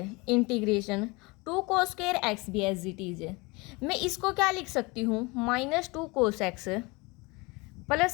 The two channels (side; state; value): right; quieter; 25.6 dB